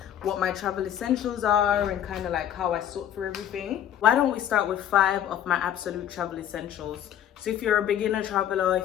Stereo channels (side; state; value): right; quieter; 10.4 dB